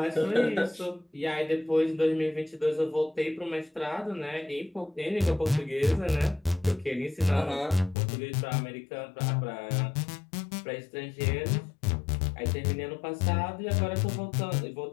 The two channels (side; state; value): right; drops out; at 8.0 s